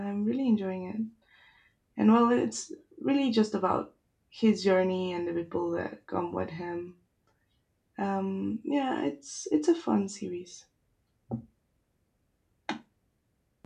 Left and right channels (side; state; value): both; identical; correlation 1.00